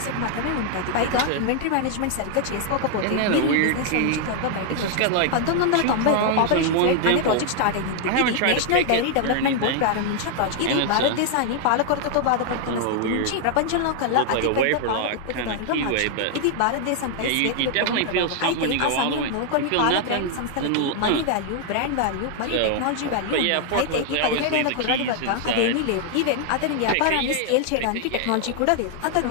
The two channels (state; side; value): different; both; correlation 0.00